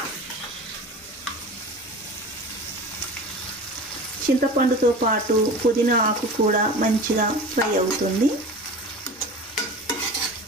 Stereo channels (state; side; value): normal; both; correlation 0.35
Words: చింతపండుతో పాటు పుదీనా ఆకు కూడా మంచిగా ఫ్రై అవుతుంది.